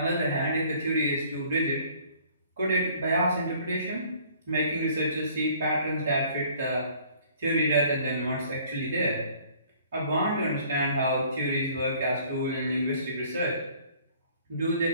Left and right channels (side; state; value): both; inverted; correlation -0.56